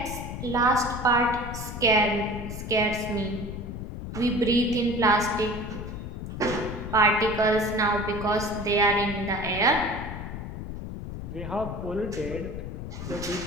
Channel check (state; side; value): noise; left; rumble, 8 dB below the sound